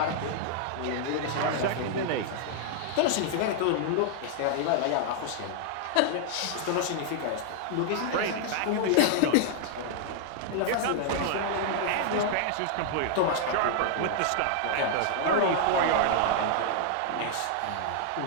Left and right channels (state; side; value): different; both; correlation -0.01